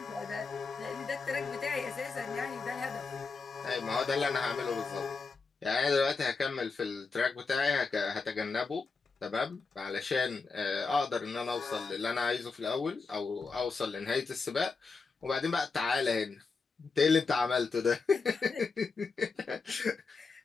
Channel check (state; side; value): quieter; right; 4.5 dB